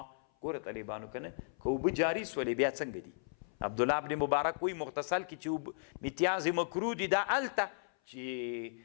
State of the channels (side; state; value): right; silent; 54 dB below the other